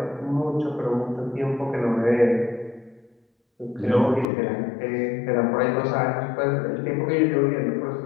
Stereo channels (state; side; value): drops out; right; at 4.2 s